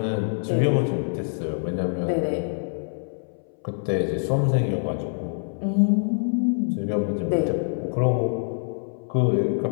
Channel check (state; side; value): silent; right; 60 dB below the other